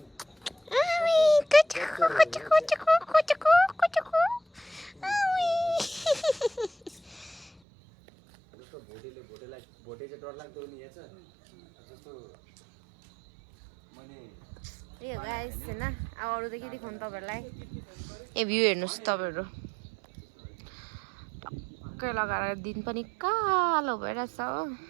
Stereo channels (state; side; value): drops out; left; at 7.6 s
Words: भोटे चाहिँ डरलाग्दो नि यहाँ छ जस्तो मैले ए गाइस हैन अब अरू त के देखाउनु तपाईहरुलाई ए भ्यू हेर्नुस् तपाईहरु टक्कै लगाएर दिन पनि कालो भइरहेछ हो